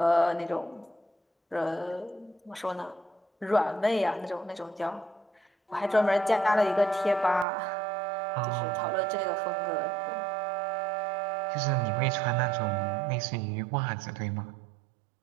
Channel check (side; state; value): left; drops out; at 7.5 s